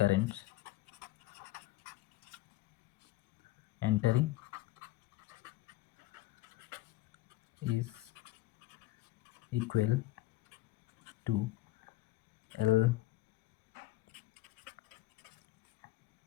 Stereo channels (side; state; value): right; quieter; 17.2 dB